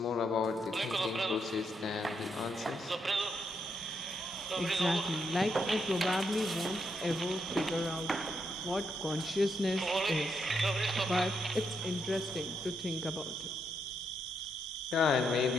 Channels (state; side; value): normal; both; correlation 0.79